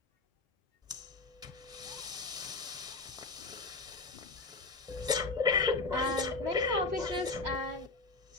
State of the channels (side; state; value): right; quieter; 3.7 dB